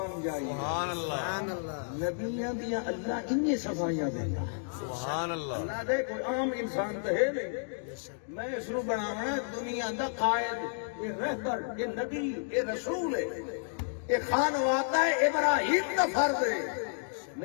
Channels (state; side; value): silent; right; digital silence